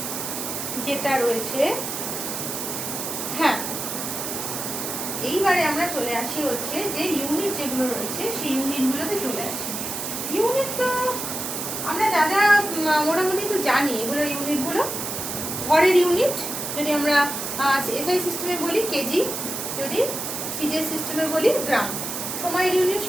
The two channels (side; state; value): right; noise; hiss, 4 dB below the sound